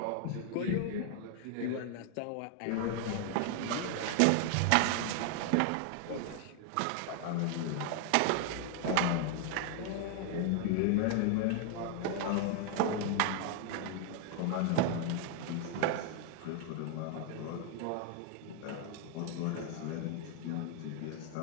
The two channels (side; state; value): both; different; correlation 0.00